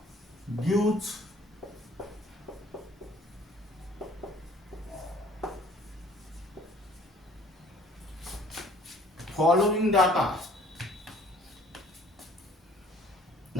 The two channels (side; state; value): both; normal; correlation 0.55